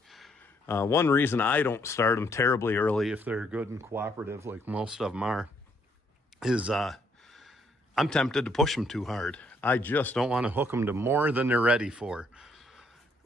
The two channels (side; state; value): both; normal; correlation 0.70